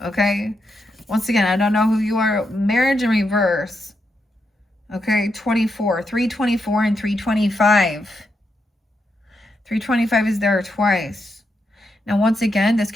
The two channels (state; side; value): normal; both; correlation 0.82